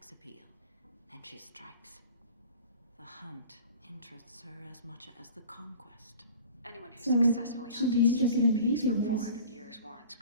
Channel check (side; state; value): both; inverted; correlation -0.43